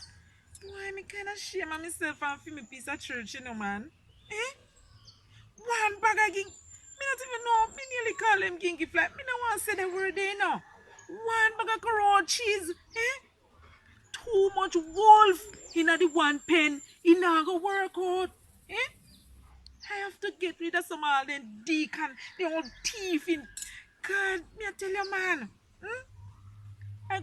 Why me kind of shame of myself and feel me piece of church, you know, man. One bag of ging. Me not even know. Me nearly call him gingy fly. Me don't want to say the word there, you know. One bag of raw cheese. Too much wolf in the one pen. It not go work out. I have to get rid of some all them deacon, the old thief in. God, me I tell you, man. I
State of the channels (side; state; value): both; identical; correlation 1.00